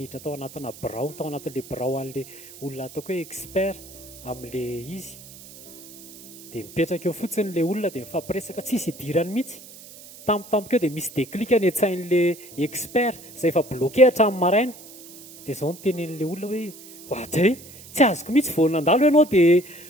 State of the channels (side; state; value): right; noise; hiss, 18 dB below the sound